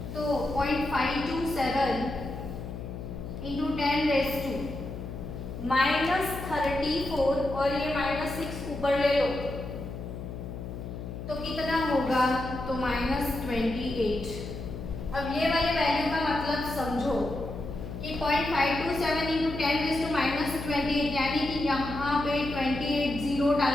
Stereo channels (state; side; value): noise; left; hum, 8 dB below the sound